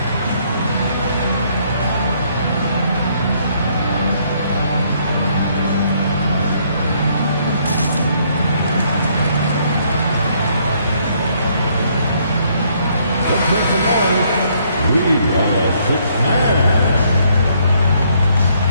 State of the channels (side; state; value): both; inverted; correlation -0.68